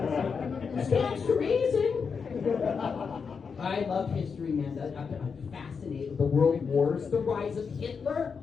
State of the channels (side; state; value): right; quieter; 5.8 dB